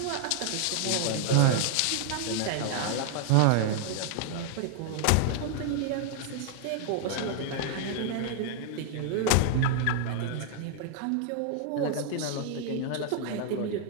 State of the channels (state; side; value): different; both; correlation 0.00